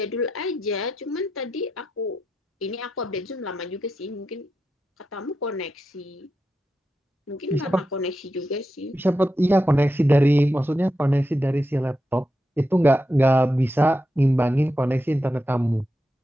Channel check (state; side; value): normal; both; correlation 0.87